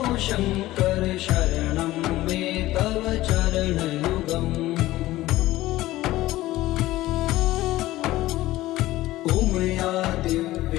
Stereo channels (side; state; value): right; quieter; 16.6 dB